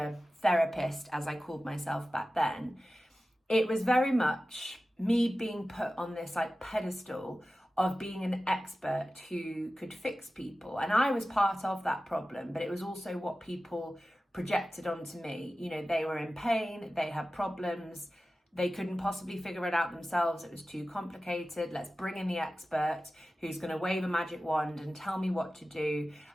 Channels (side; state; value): both; normal; correlation 0.95